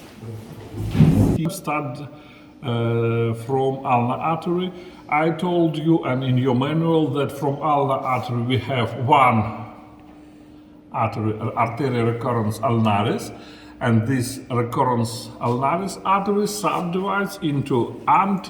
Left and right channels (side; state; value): both; identical; correlation 1.00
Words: You start from ulnar artery. I told you, and in your manual, that from ulnar artery we have one artery, arteria recurrens ulnaris, and this recurrens ulnaris artery subdivides into